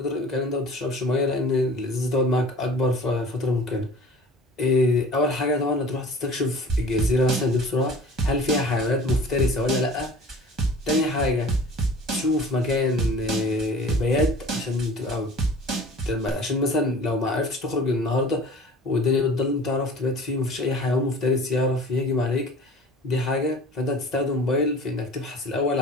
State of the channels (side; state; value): both; normal; correlation 0.44